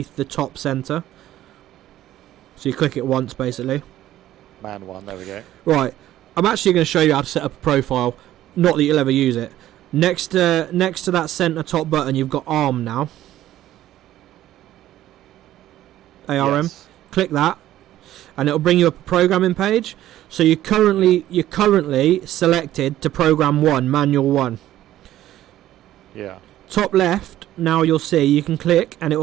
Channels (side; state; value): left; quieter; 13.5 dB